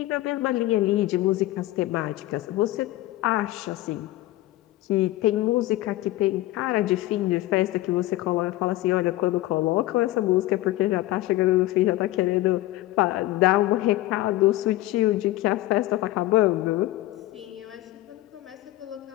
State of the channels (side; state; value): right; quieter; 16.8 dB